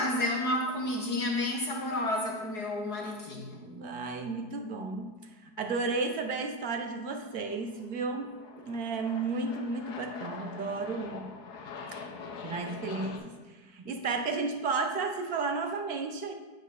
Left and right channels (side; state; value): right; late; 4.7 ms